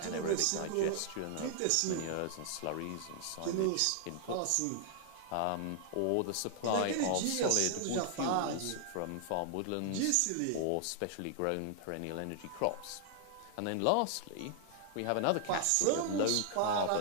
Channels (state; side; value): different; both; correlation -0.01